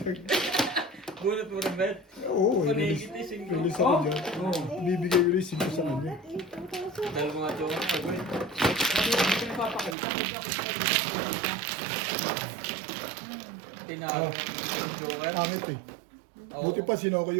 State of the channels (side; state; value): left; drops out; at 10.0 s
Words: Bunot mo rin, Bet. Oo, Panigit eh, singko. release ako dyan. Bibigay ko rin 5 sa kanya. Dahil mga jowa ko, Bet. Sabi ko, hindi pinapapakita. Hindi ako sa Ah. Jowa. Pangit eh. Buti pa sinoko